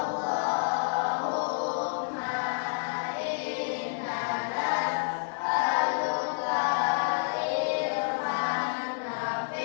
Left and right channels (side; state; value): right; silent; 58 dB below the other